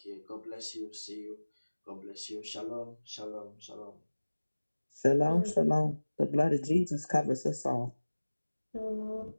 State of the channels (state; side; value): inverted; both; correlation -1.00